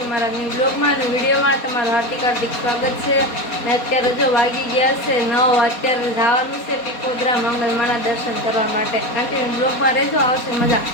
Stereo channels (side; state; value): right; late; 4.2 ms